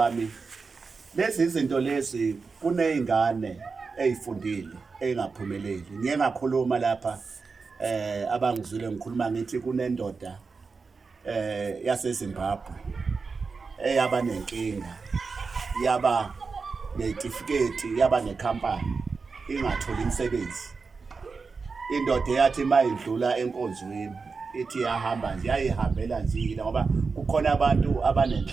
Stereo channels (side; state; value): left; quieter; 4.7 dB